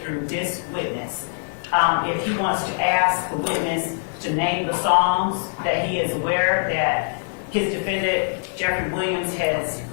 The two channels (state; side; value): silent; right; digital silence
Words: through this witness. If he wants to ask the witness to name the songs that he is aware that his defendant, Jeffery Williams, has